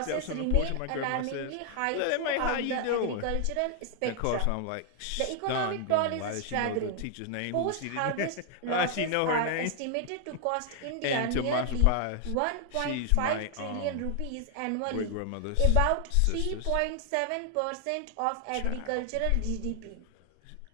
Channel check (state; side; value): different; both; correlation 0.00